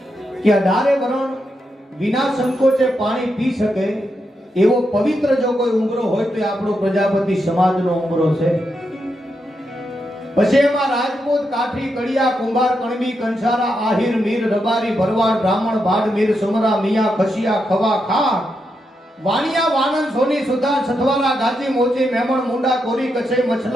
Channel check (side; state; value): both; normal; correlation 0.84